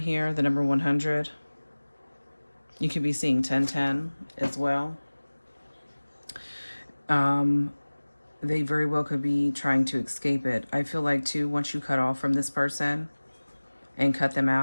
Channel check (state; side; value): inverted; both; correlation -1.00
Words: the number 100, you could be seeing 1010 as well. They very well could be trying to escape it. I feel like too, once you cut off from this person and cut them